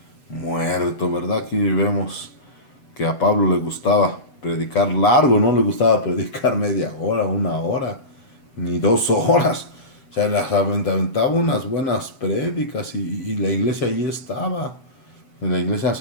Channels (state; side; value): late; right; 8.0 ms